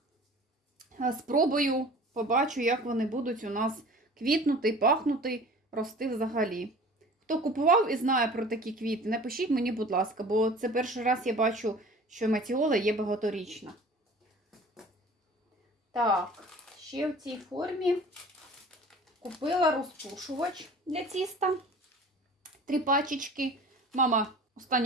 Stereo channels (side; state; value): both; normal; correlation 0.44